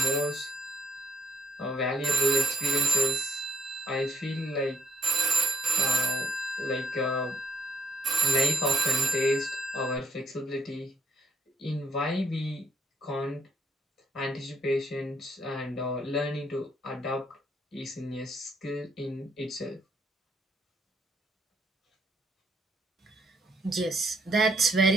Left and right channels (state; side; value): normal; both; correlation 0.71